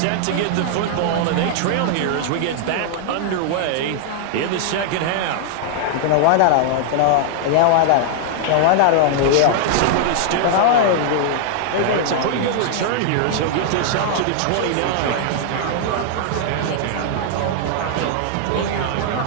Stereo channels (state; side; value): different; both; correlation -0.01